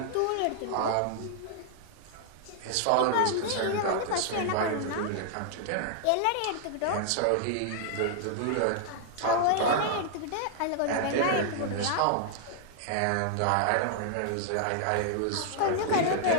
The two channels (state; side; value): different; both; correlation -0.01